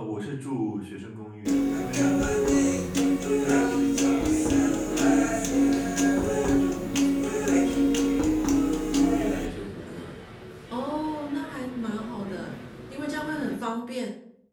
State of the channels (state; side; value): identical; both; correlation 1.00